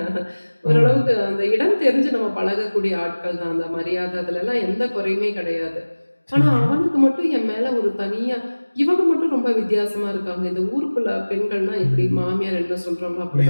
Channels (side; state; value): both; inverted; correlation -1.00